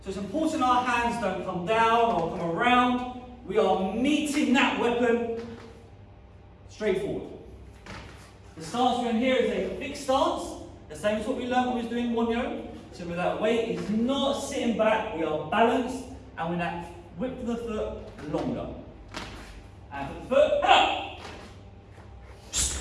So it's important our hands don't come down or come around. We are meeting that weapon straight forward. The stance we're in here is a fixed stance, the same as what we learned when we was doing Wonyo. So with that weight is not sitting back, we are balanced, and with that width of the foot longer. And for the foot,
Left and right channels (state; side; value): identical; both; correlation 1.00